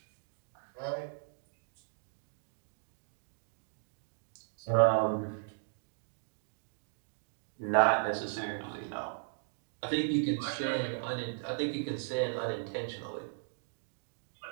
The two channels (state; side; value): silent; left; digital silence